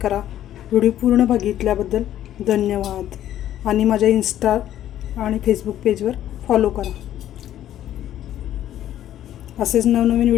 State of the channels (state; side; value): quieter; right; 12.0 dB